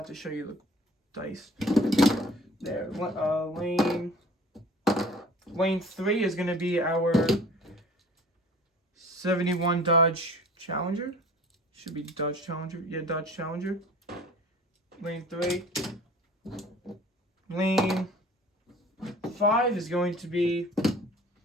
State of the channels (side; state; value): both; normal; correlation 0.47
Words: to show you the dice. There. Lane 3 is going to be our 71 Dodge Challenger. Should be Dodge Challenger. Yeah, Dodge Challenger. Lane 3. Lane 5 is going to be